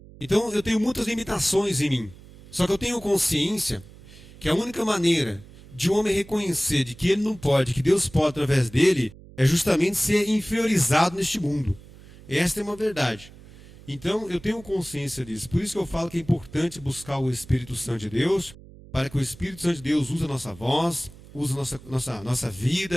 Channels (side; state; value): right; noise; hum, 20 dB below the sound